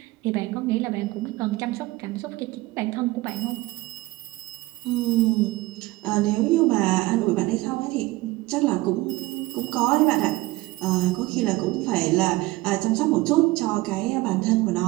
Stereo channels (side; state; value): left; quieter; 19.8 dB